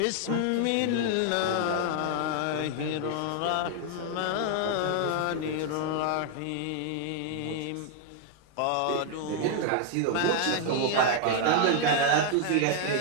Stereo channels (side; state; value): both; different; correlation 0.00